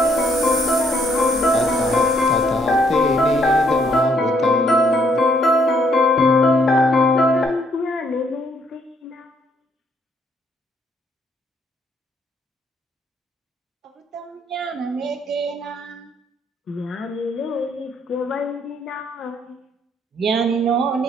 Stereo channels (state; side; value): normal; both; correlation 0.69